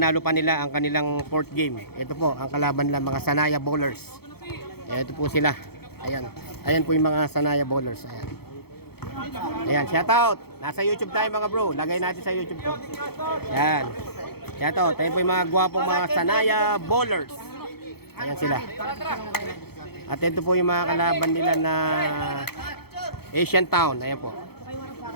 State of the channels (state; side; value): late; right; 0.96 ms